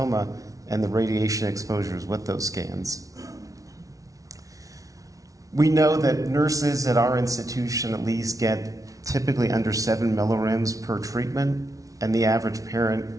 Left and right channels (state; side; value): late; left; 0.17 ms